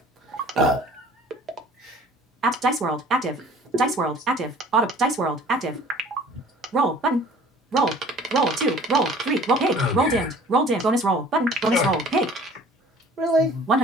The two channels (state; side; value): normal; both; correlation 0.49